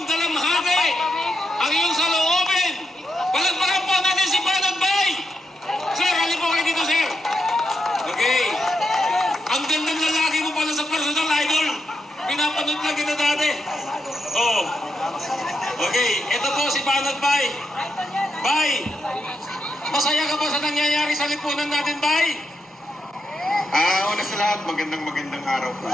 dalamhati, ang iyong saloobin. Palagpagan po natin si Banat Bay. Sir, halip po kayo dito, sir. Okay. Ang gandang lalaki mo pala sa personal idol. Pinapanood lang kita dati. Oh. Okay, ito po si Banat Bay. Bay, masaya ka po sa nangyayari sa lipunan natin, Bay? Una sa lahat, magandang araw po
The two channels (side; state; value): both; normal; correlation 0.83